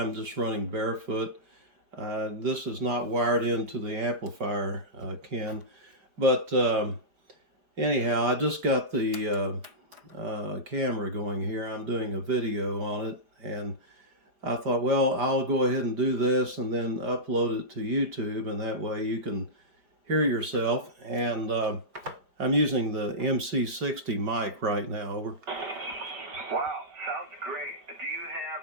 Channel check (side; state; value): left; late; 4.9 ms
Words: just running barefoot. This is not wired into the amplifier, Ken. But anyhow, I just got the camera going here. I'm doing a video on it, and I thought, well, I'll go ahead and do this and then upload it to YouTube, and that way you can hear yourself. And I'm using the MC60 mic right now. Over. Wow, sounds great. Do you have